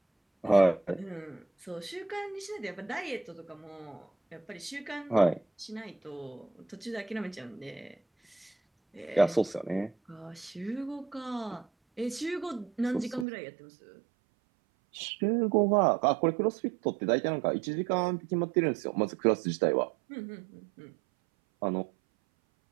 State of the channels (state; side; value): drops out; left; at 13.2 s